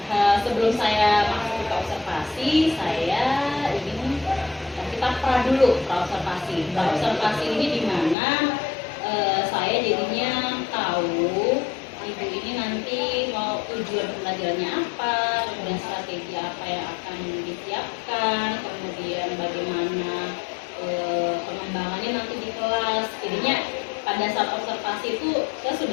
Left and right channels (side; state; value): right; drops out; at 8.2 s